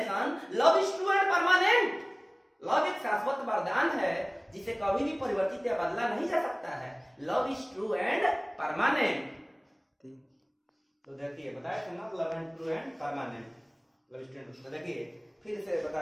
love is true and permanent. Love एक शाश्वत वरदान है जिसे कभी भी परिवर्तित या बदला नहीं जा सकता है। Love is true and permanent. तो देखिए बताया था ना, love and true and permanent, love is true. तो देखिए फिर से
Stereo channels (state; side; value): identical; both; correlation 1.00